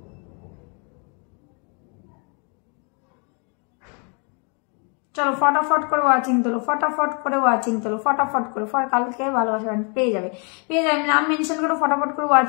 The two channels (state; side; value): quieter; right; 36.9 dB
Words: চলো ফটাফট করে ওয়াচিং তোলো, ফটাফট করে ওয়াচিং তোলো, ফটাফট করে। কালকে ভালোবাসা পেয়ে যাবে, পেয়ে যাবে। নাম মেনশন করো, ফটাফট করে